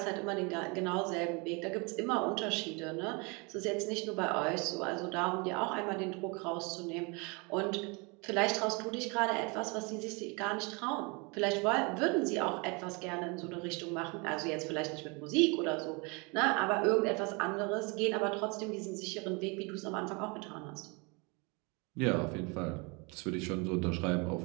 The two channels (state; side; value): quieter; left; 30.0 dB